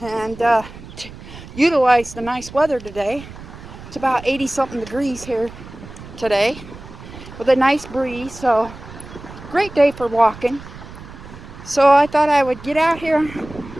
and utilize the nice weather today. It's about 80-something degrees here today with a nice breeze, so great day for walking. So I thought I would get out here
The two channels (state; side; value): noise; right; rumble, 16 dB below the sound